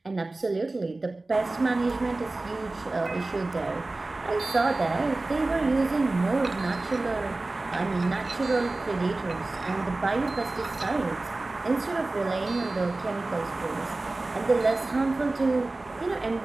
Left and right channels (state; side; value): quieter; left; 3.1 dB